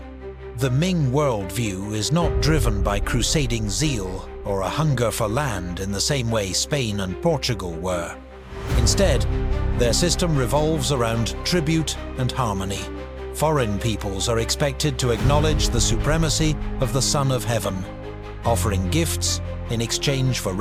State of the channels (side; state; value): both; identical; correlation 1.00